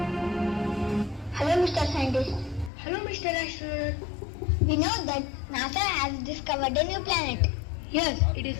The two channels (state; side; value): drops out; right; at 2.7 s